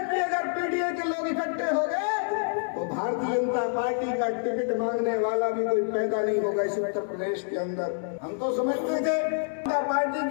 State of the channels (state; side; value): silent; right; digital silence